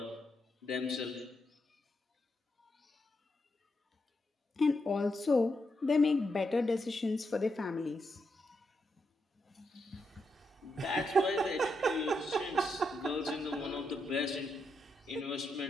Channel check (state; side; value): normal; both; correlation 0.83